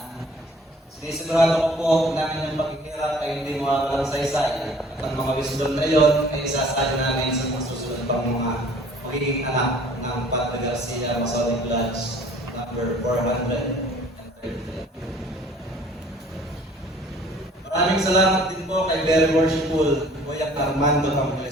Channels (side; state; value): both; normal; correlation 0.53